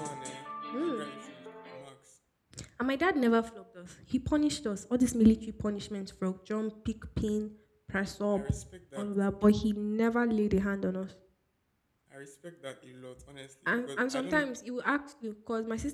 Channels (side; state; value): both; identical; correlation 1.00